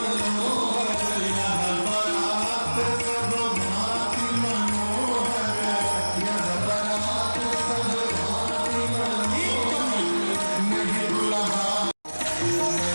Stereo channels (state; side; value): inverted; both; correlation -1.00